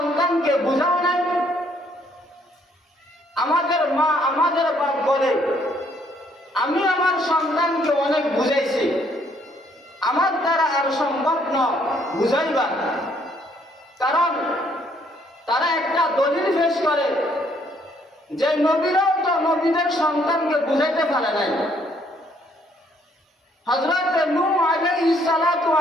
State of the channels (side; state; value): both; normal; correlation 0.67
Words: বুঝাও নাই? আমাদের মা, আমাদের বাপ বলে, আমি আমার সন্তানকে অনেক বুঝাইছি, আমার দ্বারা আর সম্ভব নয় বুঝাইবার। কারণ তারা একটা দলিল পেশ করে যে নবীরাও তো নবীদের সন্তানকে বুঝাইতে পারে নাই। হযরত নূহ আলাইহিস সালাতু